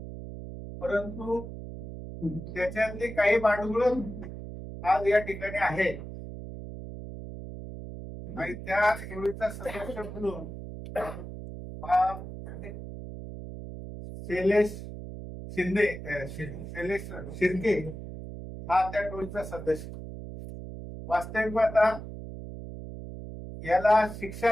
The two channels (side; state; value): right; noise; hum, 10 dB below the sound